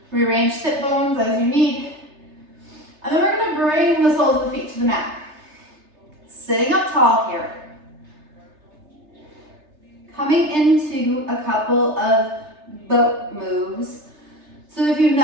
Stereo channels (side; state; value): left; late; 3.3 ms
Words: Rearrange sit bones as you need. And then we're gonna bring the soles of the feet to the mat. Sitting up tall here. Coming into a couple of boat moves. So if you've